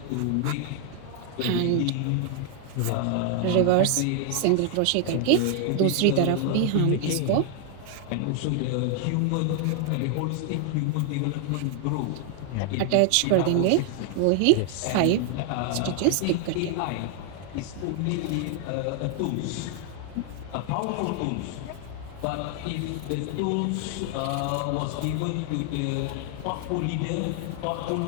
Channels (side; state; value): both; different; correlation 0.00